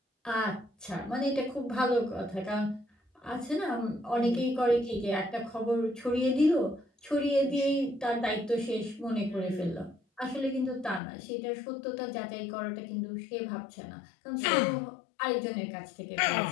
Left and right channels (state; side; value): drops out; right; at 11.0 s